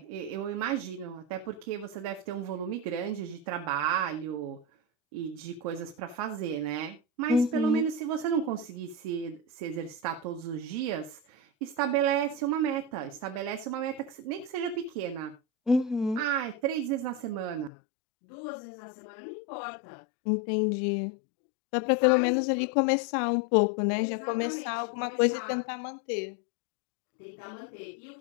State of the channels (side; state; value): right; drops out; at 17.7 s